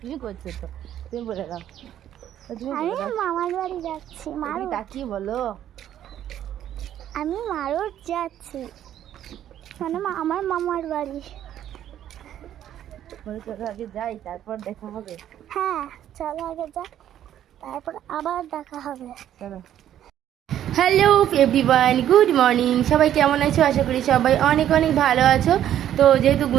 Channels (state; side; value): quieter; left; 11.2 dB